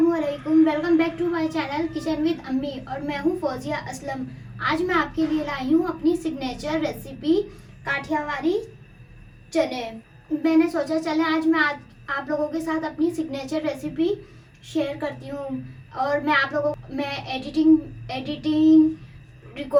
Welcome back to my channel kitchen with Ammi और मैं हूं फौजिया असलम। आज मैं आपके लिए लाई हूं अपनी सिग्नेचर रेसिपी काठियावाड़ी चने। मैंने सोचा चले आज मैं आप लोगों के साथ अपनी सिग्नेचर रेसिपी शेयर करती हूं और मैं एडिटिंग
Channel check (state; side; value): identical; both; correlation 1.00